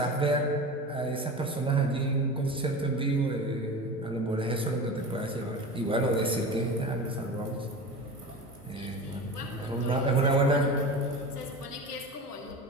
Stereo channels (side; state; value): both; normal; correlation 0.31